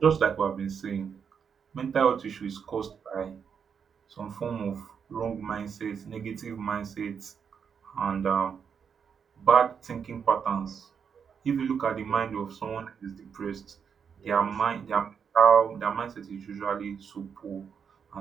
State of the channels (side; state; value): left; quieter; 6.9 dB